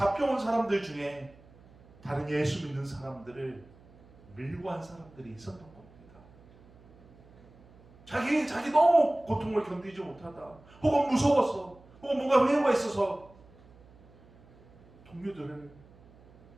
사람들 중에 다른 예수 믿는 사람들을 밀고 한 사람들이 있었던 겁니다. 자기 너무 고통을 견디지 못하다, 혹은 무서워서, 혹은 뭔가 회유가 있어서 동료들을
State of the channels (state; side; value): noise; right; hum, 25 dB below the sound